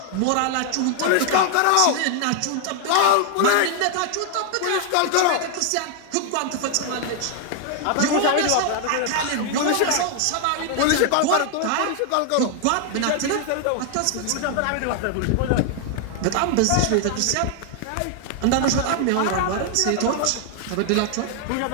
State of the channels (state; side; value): different; both; correlation 0.00